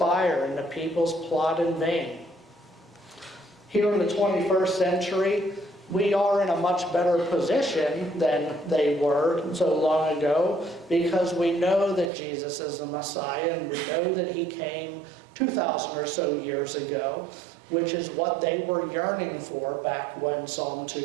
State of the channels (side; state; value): left; drops out; at 12.1 s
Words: and the peoples plot in vain? Here in the 21st century, we are in a much better position than they were so long ago, because we know that Jesus is the Messiah, and we know that he came 2,000 or so years ago, which is what they were yearning for back when Psalm